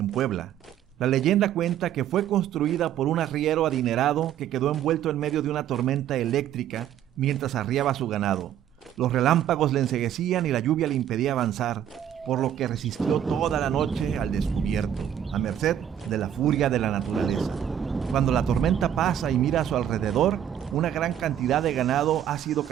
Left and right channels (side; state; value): left; quieter; 10.3 dB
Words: Puebla. La leyenda cuenta que fue construida por un arriero adinerado que quedó envuelto en medio de una tormenta eléctrica mientras arriaba su ganado. Los relámpagos le enceguecían y la lluvia le impedía avanzar, por lo que resistió toda la noche al descubierto, a merced de la furia de la naturaleza. Cuando la tormenta pasa y mira a su alrededor, una gran cantidad de ganado ha sido